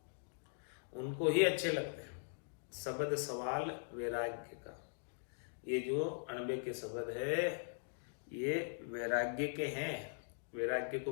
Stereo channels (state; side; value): silent; right; digital silence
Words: उनको ही अच्छे लगते हैं। शब्द सवाल वैराग्य का, ये जो 98 के शब्द है ये वैराग्य के हैं, वैराग्य को